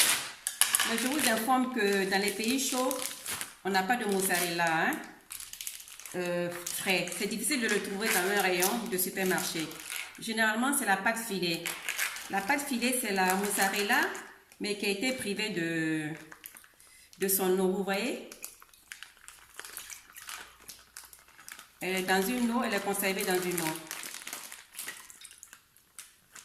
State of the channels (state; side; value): identical; both; correlation 1.00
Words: Mais je vous informe que dans les pays chauds, on n'a pas de mozzarella frais. C'est difficile de le trouver dans un rayon de supermarché. Généralement, c'est la pâte filet. La pâte filet, c'est la mozzarella, mais qui a été privée de son eau. Vous voyez? Elle est dans une eau, elle est conservée dans une eau.